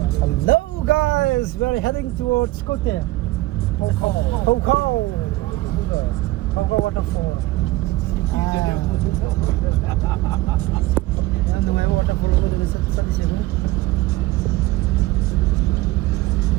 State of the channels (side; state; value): left; quieter; 18.3 dB